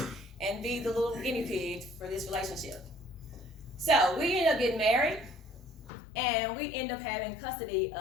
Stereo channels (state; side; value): drops out; right; at 5.9 s